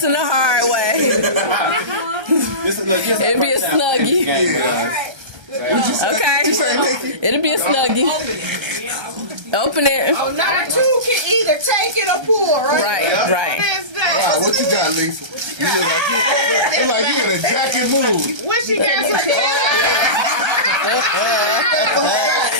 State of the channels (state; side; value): late; left; 1.3 ms